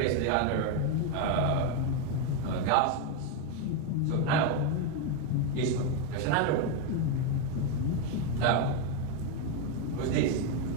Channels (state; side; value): different; both; correlation 0.02